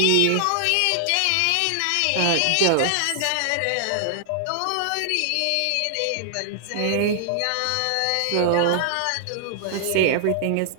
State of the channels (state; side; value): different; both; correlation -0.01